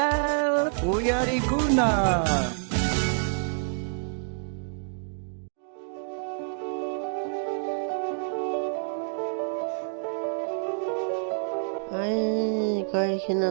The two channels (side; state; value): left; silent; digital silence